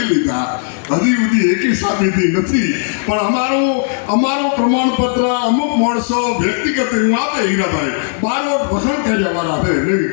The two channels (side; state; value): right; silent; digital silence